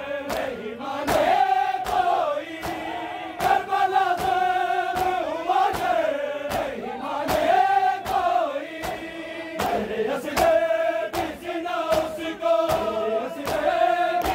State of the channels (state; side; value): identical; both; correlation 1.00